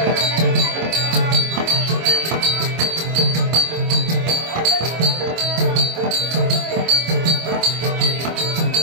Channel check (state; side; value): late; left; 25 ms